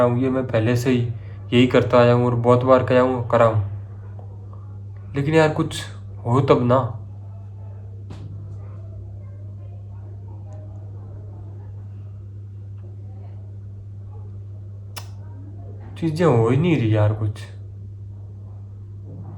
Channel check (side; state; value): both; identical; correlation 1.00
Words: हूँ, ये मैं पहले से ही यही करता आया हूँ और बहुत बार करा हूँ, लेकिन यार कुछ हो तब ना। चीज़ें हो ही नहीं रही यार कुछ।